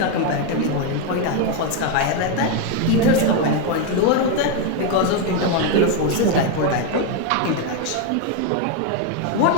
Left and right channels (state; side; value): different; both; correlation 0.02